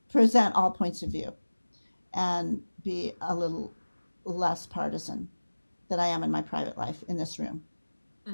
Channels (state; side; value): inverted; both; correlation -1.00